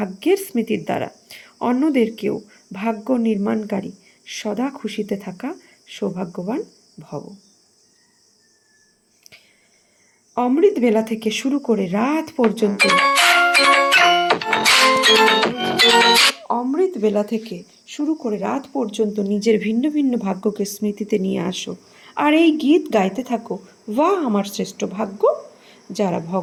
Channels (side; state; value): both; identical; correlation 1.00